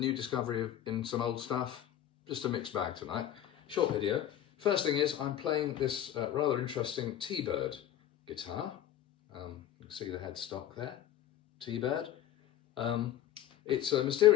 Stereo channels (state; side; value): quieter; right; 11.6 dB